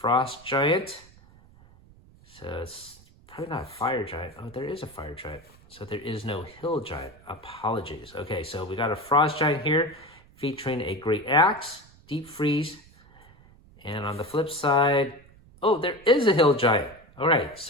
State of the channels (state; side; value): noise; right; rumble, 25 dB below the sound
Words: giant. So it's probably not a fire giant. Oh, there is a fire giant. So there is no hill giant. Apologies. Okay, so we got a frost giant here featuring a great axe, deep freeze. And on the flip side, oh, there is a hill giant. All right,